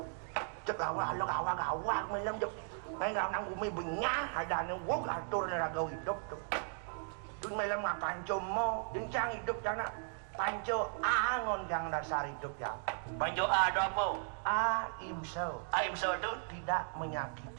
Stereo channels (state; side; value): silent; left; 53 dB below the other